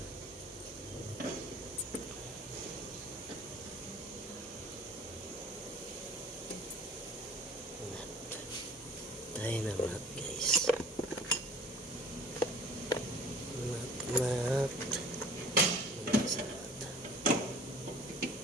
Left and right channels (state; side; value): normal; both; correlation 0.47